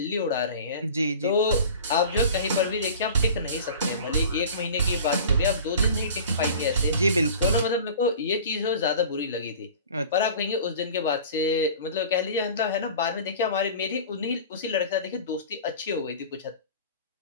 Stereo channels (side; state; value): both; inverted; correlation -0.40